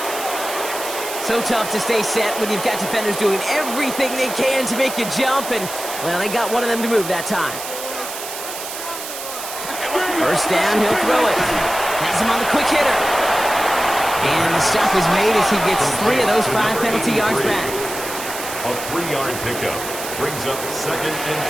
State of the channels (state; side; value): noise; right; hiss, 8 dB below the sound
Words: So tough to stay set when you've got defenders doing everything they can to make you jump. And, well, they got one of them to move that time. 1st down, he'll throw it. Has him on the quick hitter. And the stop is made as he gets 3 of those 5 penalty yards back. A 3-yard pickup brings up 2nd and